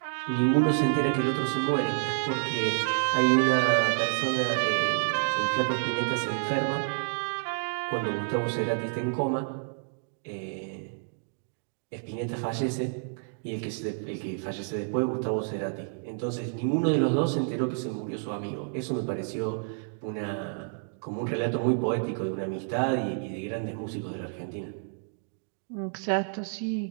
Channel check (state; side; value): silent; left; digital silence